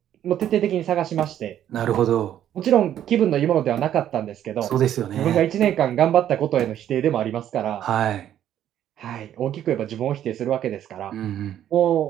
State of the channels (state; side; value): quieter; left; 11.0 dB